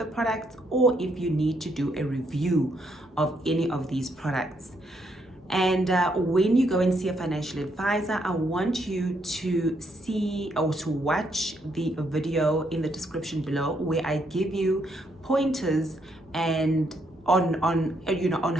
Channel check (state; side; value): normal; both; correlation 0.74